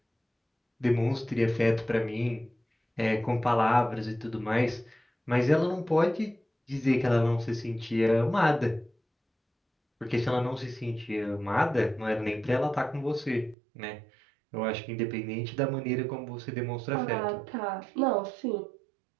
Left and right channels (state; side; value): drops out; left; at 13.6 s